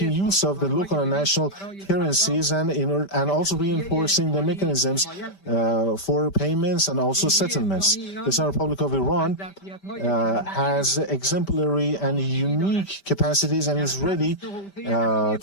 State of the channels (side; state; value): right; late; 5.1 ms